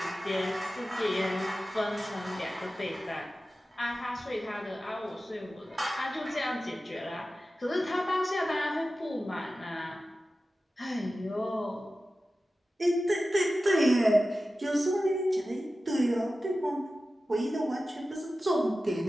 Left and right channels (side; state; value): both; normal; correlation 0.94